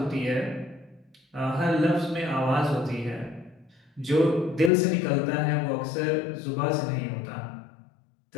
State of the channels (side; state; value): right; drops out; at 4.7 s